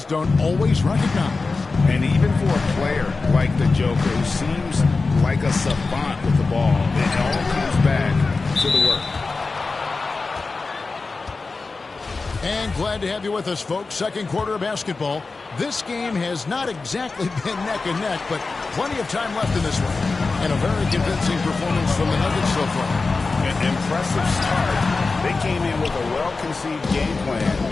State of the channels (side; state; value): right; quieter; 4.0 dB